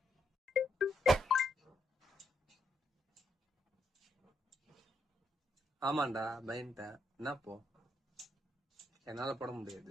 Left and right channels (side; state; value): both; normal; correlation 0.78